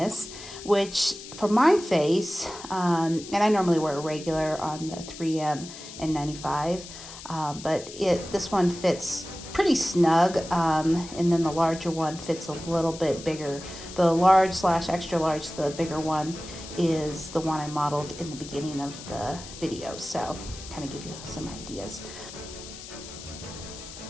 which for my face, and I normally wear a regular on the 3M N95, but this one fits pretty snug, and then the larger one fits a little bit bigger. The large / extra large, the bigger one, is the one I modeled in the beginning of the video, so kind of give you some ideas.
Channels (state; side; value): noise; left; hiss, 14 dB below the sound